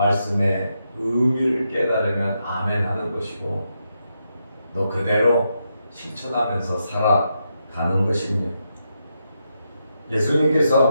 의미를 깨달으면 아멘 하는 것이고 너 그대로 실천하면서 살아가는 것입니다.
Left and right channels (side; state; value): both; inverted; correlation -0.83